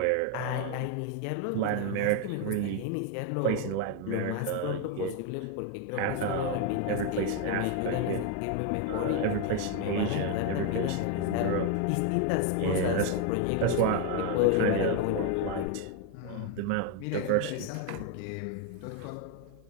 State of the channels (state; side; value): different; both; correlation 0.01